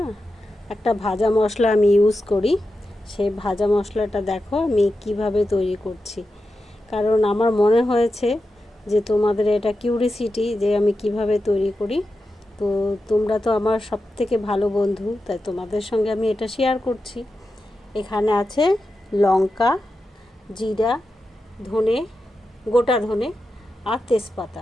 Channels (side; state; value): both; normal; correlation 0.90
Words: একটা ভাজা মশলা আমি ইউজ করি। সেই ভাজা মশলাটা দেখো আমি কিভাবে তৈরি করছি। কারণ আমার মনে হয়েছে যে তোমাদের এটা কিউরিসিটি যে আমি কিভাবে তৈরি করি। তো তোমরা তো আমার সবথেকে ভালো বন্ধু, তাই তোমাদের সঙ্গে আমি এটা শেয়ার করছি। এখানে আছে লঙ্কা, জিরা, ধনে, গোটা ধনে আর